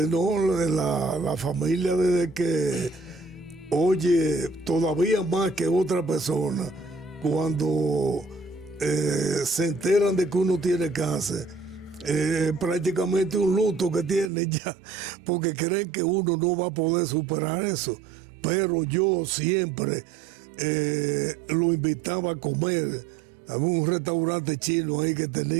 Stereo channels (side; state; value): left; drops out; at 14.3 s